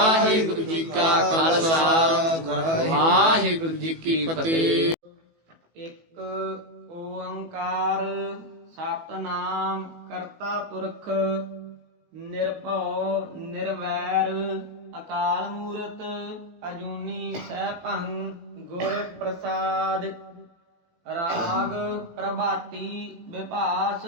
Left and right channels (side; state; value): left; late; 18 ms